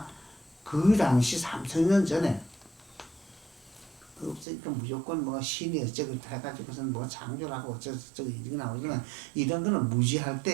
그 당시 3000년 전에 없으니까 무조건 뭐 신이 어쩌고 해가지고선 뭐 창조하고 어쩌고 이런 나오지만 이런 거는 무지할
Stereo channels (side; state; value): left; drops out; at 4.5 s